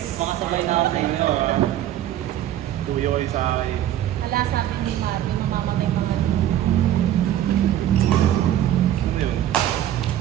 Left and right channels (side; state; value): left; quieter; 12.0 dB